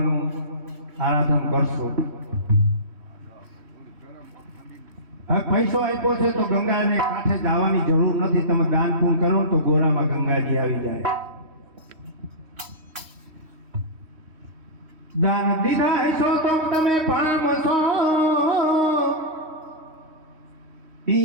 આરાધન કરશું. હવે પૈસો આપ્યો છે તો ગંગાને કાંઠે જવાની જરૂર નથી. તમે દાન પૂર્ણ કરો ને તો ગોરામાં ગંગાજી આવી જાય. દાન દીધા હશો તો તમે પામશો.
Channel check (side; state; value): left; late; 3.1 ms